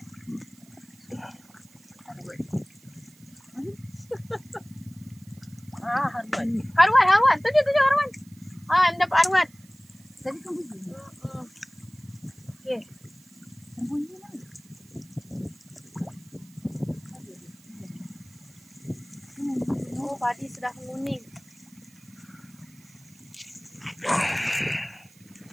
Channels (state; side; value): noise; right; hiss, 27 dB below the sound